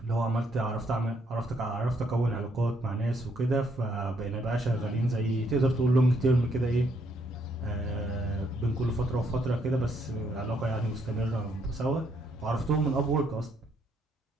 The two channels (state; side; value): normal; both; correlation 0.72